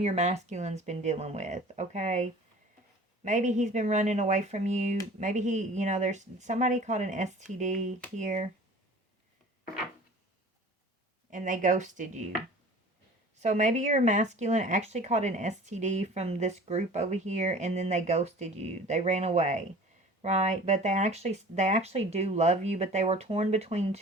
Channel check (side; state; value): both; normal; correlation 0.44